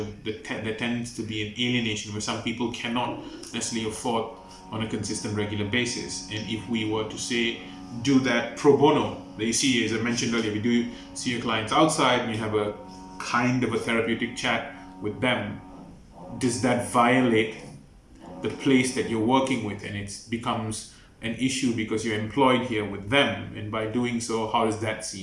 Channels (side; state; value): both; identical; correlation 1.00